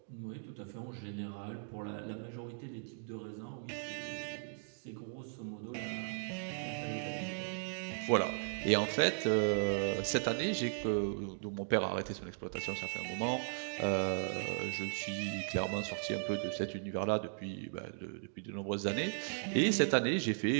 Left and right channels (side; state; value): left; silent; digital silence